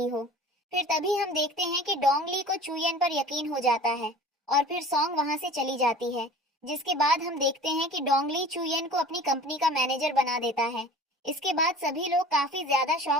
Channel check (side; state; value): both; normal; correlation 0.42